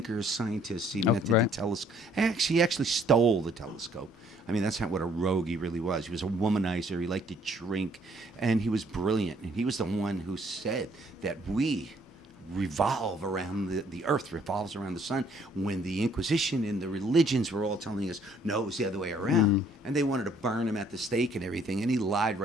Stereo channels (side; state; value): both; normal; correlation 0.63